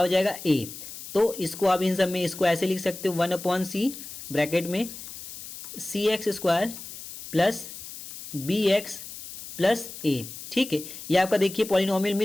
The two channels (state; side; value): noise; left; hiss, 12 dB below the sound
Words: जाएगा a। तो इसको आप इन सब में इसको ऐसे लिख सकते हो, 1/c ब्रैकेट में c x square plus B x plus a। ठीक है, ये आपका देखिए पॉलिनोमियल